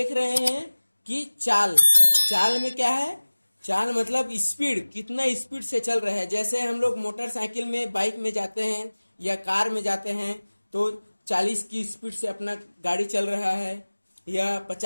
रहे हैं कि चाल। चाल में क्या है? चाल मतलब स्पीड, कितना स्पीड से चल रहा है। जैसे हम लोग मोटरसाइकिल में, बाइक में जाते हैं या कार में जाते हैं तो 40 की स्पीड से अपना गाड़ी चल रहा है या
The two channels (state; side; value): inverted; both; correlation -1.00